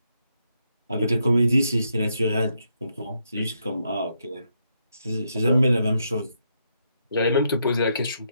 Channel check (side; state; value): both; inverted; correlation -0.79